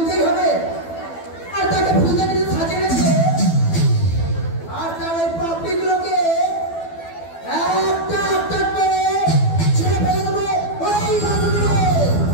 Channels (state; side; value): late; right; 12 ms